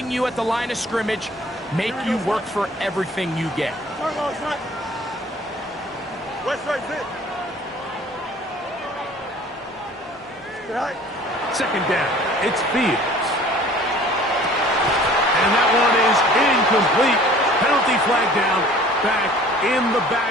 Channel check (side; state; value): both; normal; correlation 0.50